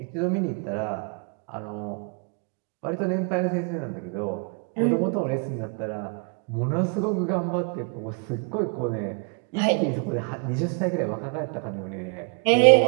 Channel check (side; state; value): left; quieter; 36.9 dB